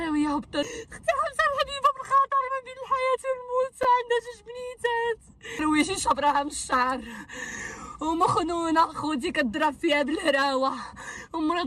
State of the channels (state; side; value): identical; both; correlation 1.00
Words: هبطت اختي حمزه الحبيبه بالخطر ما بين الحياه والموت، عندها جوج بنيتات رويشي شبرها من الشعر ومخنونه خوتي كضرب فيها بالهراوه،